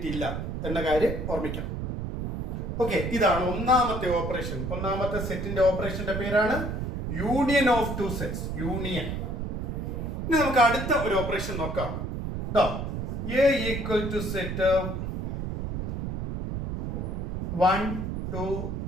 എന്ന കാര്യം ഓർമ്മിക്കണം. ഓക്കെ, ഇതാണ് ഒന്നാമത്തെ ഓപ്പറേഷൻ. ഒന്നാമത്തെ സെറ്റിന്റെ ഓപ്പറേഷന്റെ പേരാണ് union of two sets. Union. ഇനി നമുക്ക് അടുത്ത ഒരു ഓപ്പറേഷൻ നോക്കാം. A equal to set 1 2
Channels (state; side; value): noise; right; rumble, 4 dB below the sound